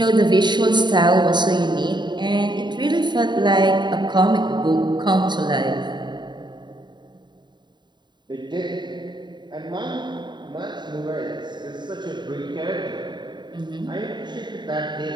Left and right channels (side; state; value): left; late; 0.22 ms